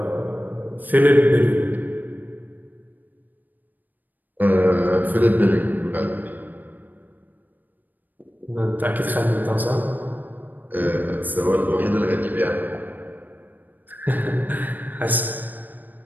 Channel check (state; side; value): late; left; 0.087 ms